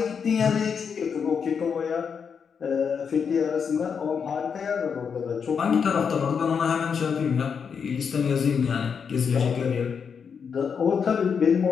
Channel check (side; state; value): right; quieter; 6.5 dB